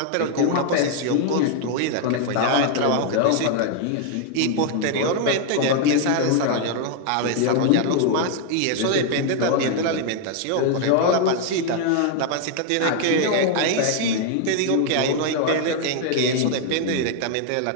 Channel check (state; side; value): different; both; correlation 0.00